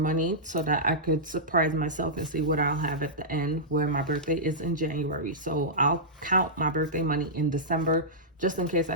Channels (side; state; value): both; normal; correlation -0.14